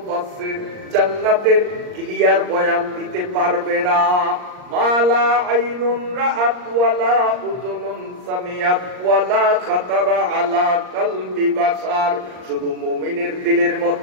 জান্নাতের ক্লিয়ার বয়ান দিতে পারবে না। মালা আইনুন রাআত ওয়ালা উযুনুন সামিআত ওয়ালা খাতারা আলা কলবি বাশার। শুধু মুমিনের দিলের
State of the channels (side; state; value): left; late; 39 ms